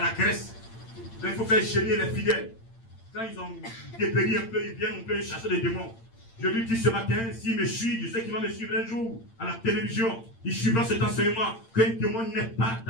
graisse. Donc il faut faire gêner les fidèles. Quand ils ont dépéri un peu, ils viennent, on peut chasser les démons. Je lui dis ce matin, s'il me suit, je sais qu'il va me suivre un jour à la télévision. Il suivra cet enseignement qu'un démon n'est pas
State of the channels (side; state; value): right; late; 8.8 ms